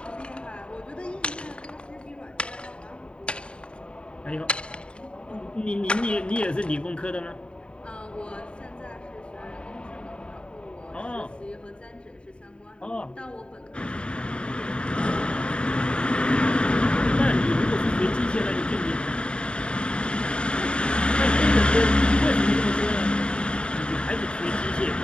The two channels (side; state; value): right; late; 0.054 ms